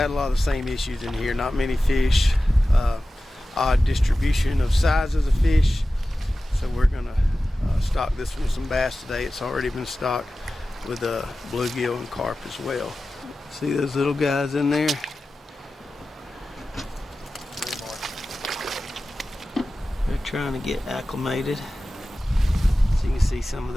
a lot of the same issues in here. Not many fish, odd distribution of sizes of fish. So we're gonna stock this one with some bass today. It's already been stocked with bluegill and carp as well. See those little guys in there? They're trying to get acclimated. So you can see some of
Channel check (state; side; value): normal; both; correlation 0.95